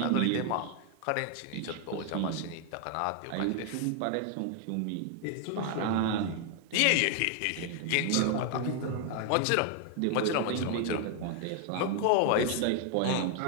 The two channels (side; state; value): both; different; correlation 0.00